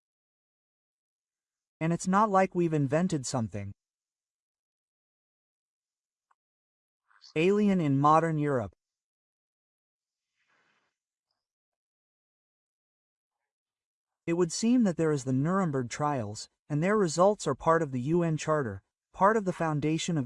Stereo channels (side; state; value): both; identical; correlation 1.00